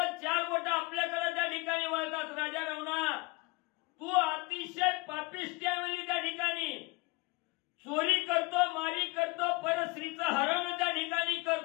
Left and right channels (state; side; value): quieter; right; 25.1 dB